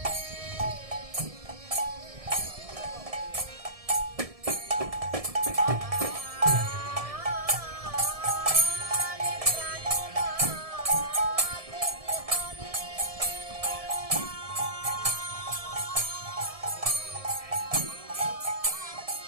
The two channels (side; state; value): left; late; 1.7 ms